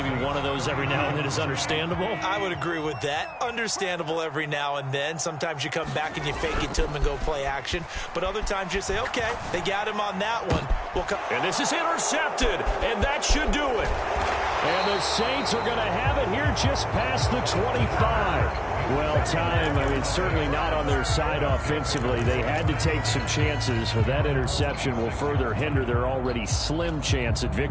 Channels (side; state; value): both; identical; correlation 1.00